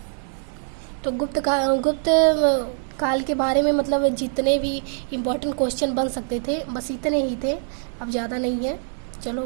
तो गुप्त काल के बारे में मतलब जितने भी इम्पोर्टेंट क्वेश्चन बन सकते थे बस इतने ही थे, अब ज़्यादा नहीं है।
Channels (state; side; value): silent; left; digital silence